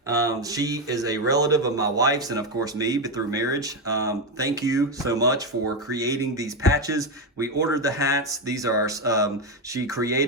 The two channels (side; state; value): both; normal; correlation 0.09